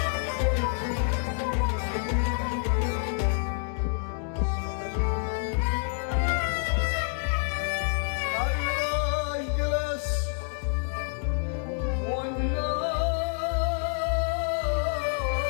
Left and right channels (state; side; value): silent; right; 59 dB below the other